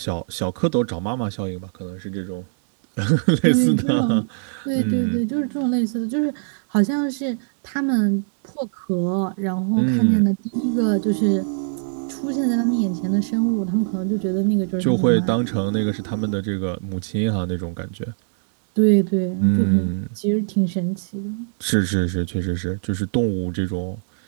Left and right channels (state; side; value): silent; left; digital silence